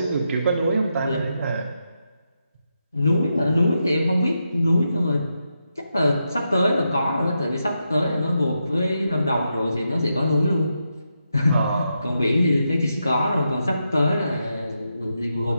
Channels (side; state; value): both; inverted; correlation -0.85